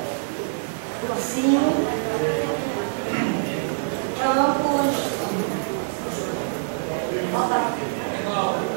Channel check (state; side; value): silent; left; digital silence